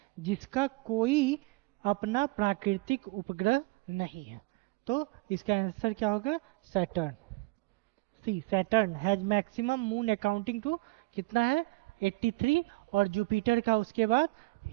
जिसका कोई अपना प्राकृतिक उपग्रह नहीं है। तो इसका आंसर क्या होगा, Saturn. C, Saturn has maximum moon accounting to कितना है 83, और जुपिटर का उसके बाद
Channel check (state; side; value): quieter; left; 23.4 dB